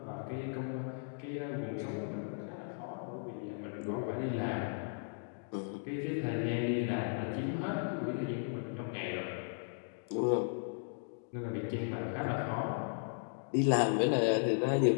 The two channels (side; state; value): right; silent; digital silence